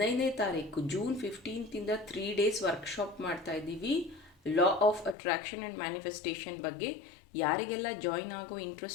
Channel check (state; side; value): drops out; right; at 5.2 s